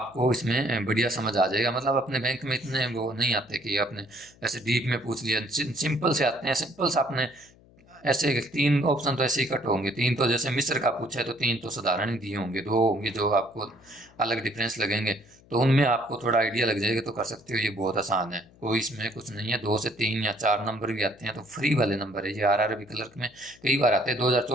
इसमें बढ़िया समझ आ जाएगा। मतलब अपने बैंक में इतने वो नहीं आते कि आपने ऐसे डीप में पूछ लिया, सिंपल से आते हैं, सिंपल से आपने ऐसे 3 ऑप्शन तो ऐसे ही कट होंगे। 3 तो जैसे मिस्र का पूछा है तो 3 तो साधारण ही दिए होंगे, 2 होंगे जो आपको अलग डिफरेंस लगेंगे, तो उनमें आपको थोड़ा आइडिया लग जाएगा, तो कर सकते हो। ये बहुत आसान है, कोई इसमें कुछ नहीं है। 2 से 3 या 4 नंबर भी आते हैं तो फ्री वाले नंबर है ये। RRB क्लर्क में कई बार आते हैं,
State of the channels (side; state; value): left; noise; hum, 27 dB below the sound